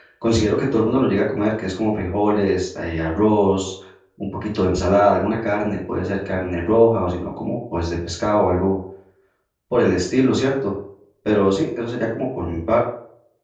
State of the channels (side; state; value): both; identical; correlation 1.00